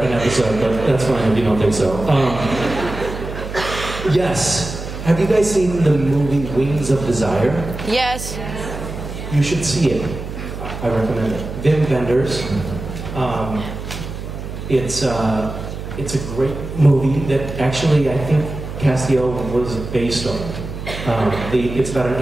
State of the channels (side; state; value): right; noise; hum, 8 dB below the sound